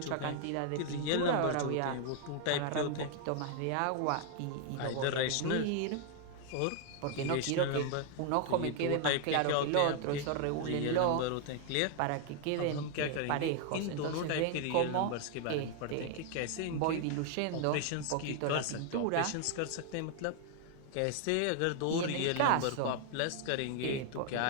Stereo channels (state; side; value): different; both; correlation 0.00